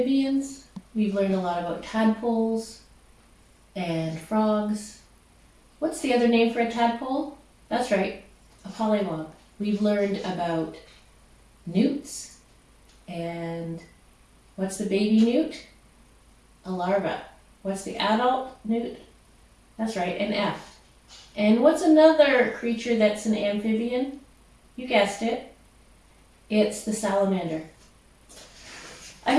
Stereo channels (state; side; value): identical; both; correlation 1.00